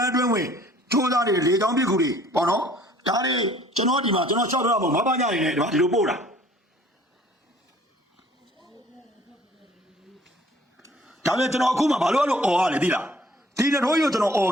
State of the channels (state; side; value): normal; both; correlation 0.55